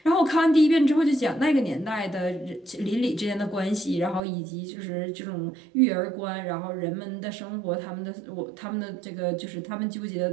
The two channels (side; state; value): left; drops out; at 4.2 s